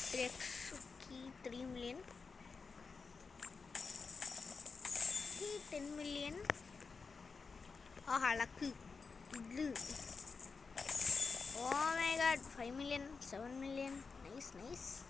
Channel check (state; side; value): quieter; right; 4.8 dB